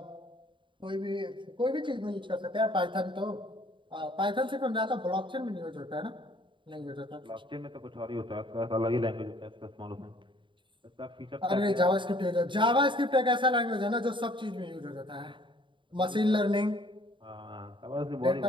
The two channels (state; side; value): late; left; 0.24 ms